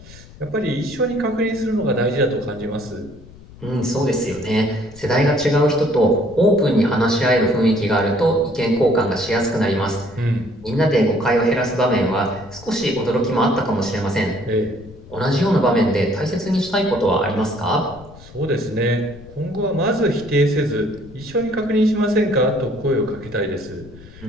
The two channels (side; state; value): left; noise; rumble, 20 dB below the sound